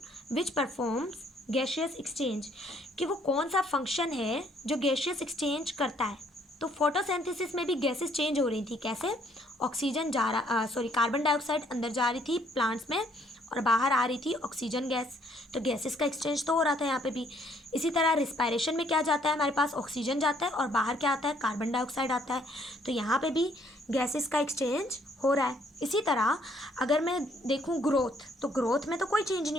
which performs gaseous exchange, कि वो कौन सा फंक्शन है जो गैशियस एक्सचेंज करता है। तो फोटोसिंथेसिस में भी गैसेस चेंज हो रही थी। कैसे? ऑक्सीजन कार्बन डाइऑक्साइड अंदर जा रही थी प्लांट्स में और बाहर आ रही थी ऑक्सीजन गैस। तो गैसेस का एक्सचेंज तो हो रहा था यहाँ पे भी। इसी तरह रिस्पायरेशन में क्या जाता है, हमारे पास ऑक्सीजन जाता है और बाहर क्या आता है, कार्बन डाइऑक्साइड आता है। तो यहाँ पे भी गैसेस का एक्सचेंज हो रहा है। इसी तरह अगर मैं देखूँ ग्रोथ, तो ग्रोथ में तो कोई चेंज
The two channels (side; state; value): both; normal; correlation 0.65